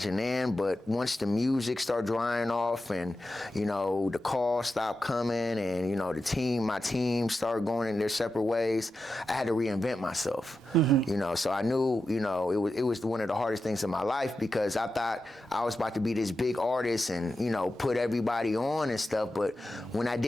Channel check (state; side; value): normal; both; correlation 0.90